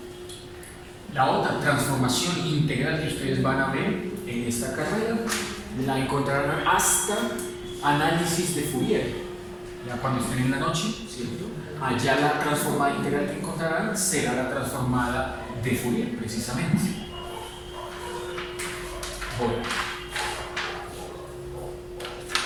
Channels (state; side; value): identical; both; correlation 1.00